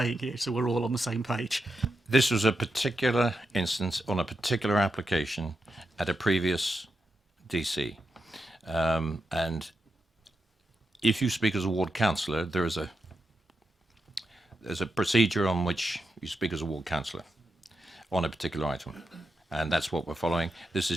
here so we're all on the same page. This was a particular instance on a particular application at a previous DC. And if you speak as a ward councillor, there's a procedure on which you speak as a ward councillor on a particular item. And that's what we're following. This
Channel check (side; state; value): both; normal; correlation 0.86